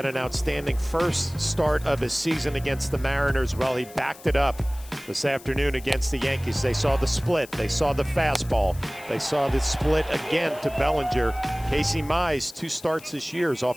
an outstanding first start of his season against the Mariners. Well, he backed it up this afternoon against the Yankees. They saw the split. They saw the fastball. They saw the split again to Bellinger. Casey Mize, 2 starts this year, is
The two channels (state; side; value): noise; left; hiss, 20 dB below the sound